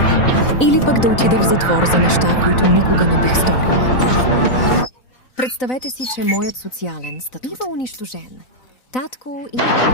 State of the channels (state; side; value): late; right; 4.0 ms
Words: Или пък да отида в затвор за неща, които никога не бих сторила. Представете си, че моят социален статут бива унищожен. Татко или